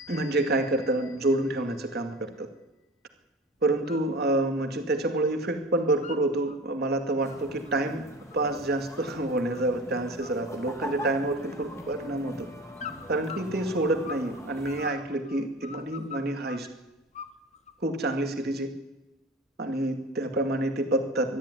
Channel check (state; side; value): normal; both; correlation 0.37